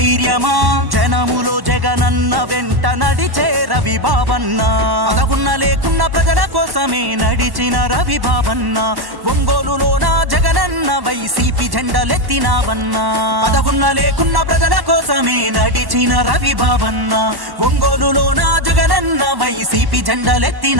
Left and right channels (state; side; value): late; left; 1.1 ms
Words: జనములో జగనన్న వెంట నడిచే రవి బాబన్న పదవున్న లేకున్న ప్రజల కోసమే నడిచిన రవి బాబన్న ఒంగోలులోన జగనన్న వైసీపీ జెండలెత్తినావన్నా పదవున్న లేకున్న ప్రజల కోసమే నడిచిన రవి బాబన్న ఒంగోలులోన జగనన్న వైసీపీ